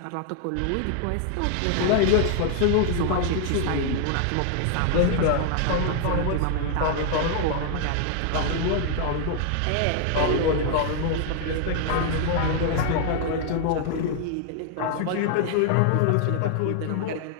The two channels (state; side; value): different; both; correlation 0.00